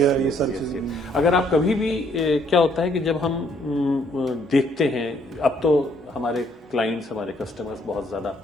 ये सब चीजें। अगर आप कभी भी क्या होता है कि जब हम देखते हैं, अब तो हमारे क्लाइंट्स, हमारे कस्टमर्स बहुत ज्यादा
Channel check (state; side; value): normal; both; correlation 0.67